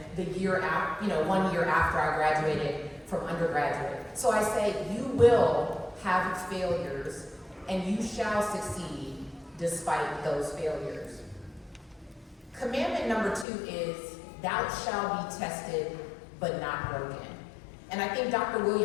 the year after, 1 year after I graduated from undergraduate. So I say, you will have its failures, and you shall succeed despite those failures. Commandment number 2 is, thou shalt be tested, but not broken. And I think Dr.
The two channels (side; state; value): right; drops out; at 13.5 s